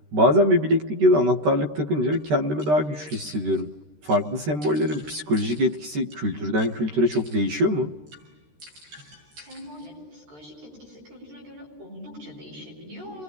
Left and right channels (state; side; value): late; left; 13 ms